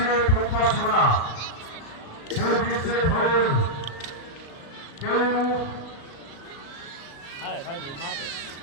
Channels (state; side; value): late; right; 36 ms